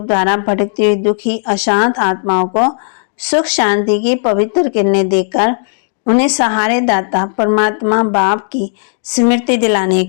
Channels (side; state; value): right; silent; 63 dB below the other